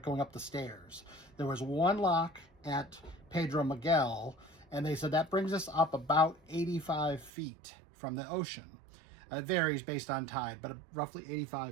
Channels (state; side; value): drops out; left; at 7.3 s